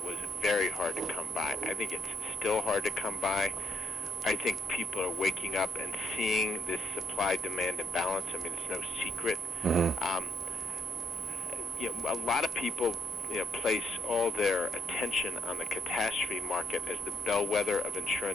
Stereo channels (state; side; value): noise; left; hum, 25 dB below the sound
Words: was very hard to come by. I think it's still hard to come by. I think people are waking up and seeing this supply-demand imbalance. I mean, it's no secret. A lot of people place all their attention on the catastrophe market as the bellwether of